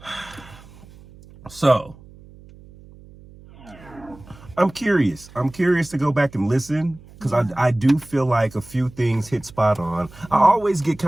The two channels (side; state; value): right; noise; hum, 22 dB below the sound